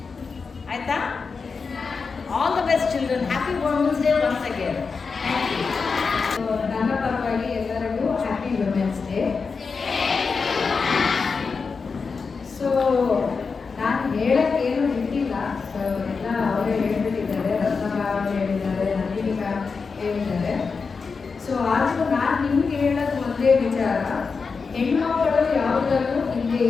ಆಯಿತಾ? All the best children. Happy women's day once again. ನನ್ನ ಪರವಾಗಿ ಎಲ್ಲರಿಗೂ ಹ್ಯಾಪಿ ವುಮೆನ್ಸ್ ಡೇ. ಸೊ ನಾನು ಹೇಳಕ್ಕೇನು ಇಟ್ಟಿಲ್ಲ, ಎಲ್ಲ ಅವರೇ ಹೇಳ್ಬಿಟ್ಟಿದ್ದಾರೆ. ರತ್ನಮ್ಮ ಅವರು ಹೇಳಿದ್ದಾರೆ, ನಂದಿನಿ ಮ್ಯಾಮ್ ಹೇಳಿದ್ದಾರೆ. ಸೊ ಆದರೂ ನಾನು ನಿಮ್ಗೆ ಹೇಳೋದು ಒಂದೇ ವಿಚಾರ, ಹೆಣ್ಮಕ್ಕಳು ಯಾವುದಲ್ಲೂ ಹಿಂದೆ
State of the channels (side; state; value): right; quieter; 4.9 dB